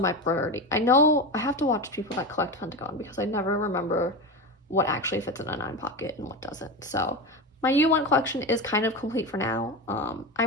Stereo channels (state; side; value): normal; both; correlation 0.22